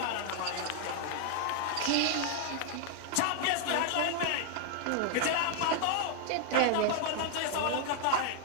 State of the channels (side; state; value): both; different; correlation 0.00